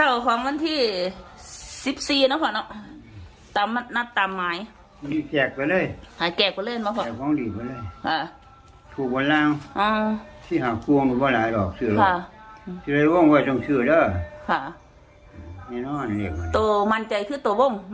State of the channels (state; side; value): identical; both; correlation 1.00